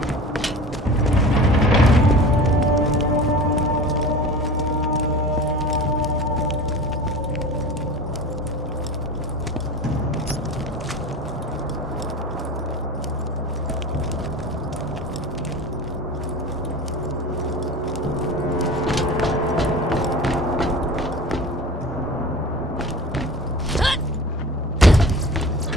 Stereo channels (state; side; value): normal; both; correlation 0.36